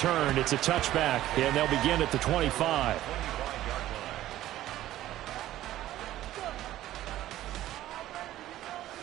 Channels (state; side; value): quieter; left; 14.1 dB